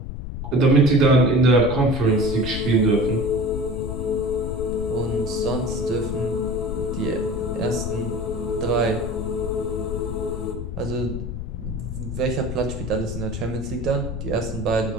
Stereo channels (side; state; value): left; noise; rumble, 6 dB below the sound